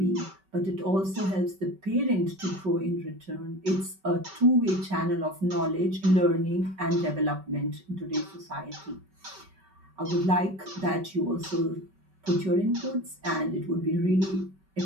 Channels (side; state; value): left; late; 5.2 ms